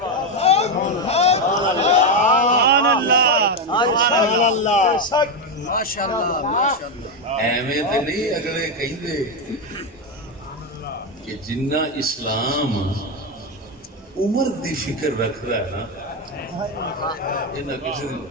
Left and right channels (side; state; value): both; normal; correlation 0.08